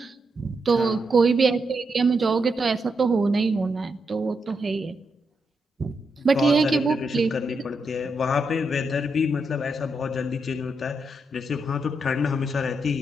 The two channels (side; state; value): both; normal; correlation 0.82